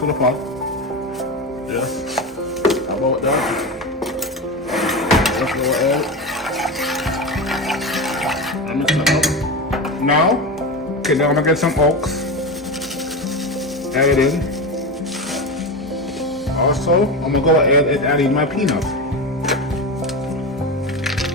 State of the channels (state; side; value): normal; both; correlation 0.21